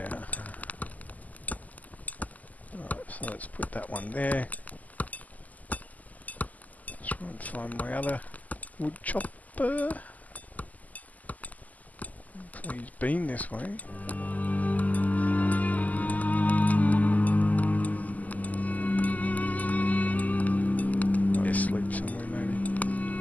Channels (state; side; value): late; right; 0.078 ms